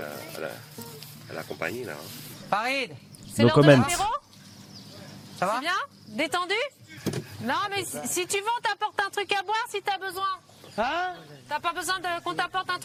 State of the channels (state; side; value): identical; both; correlation 1.00